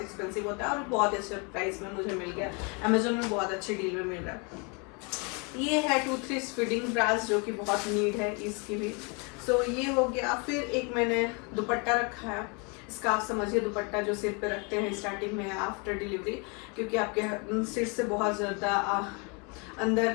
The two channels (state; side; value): quieter; right; 32.7 dB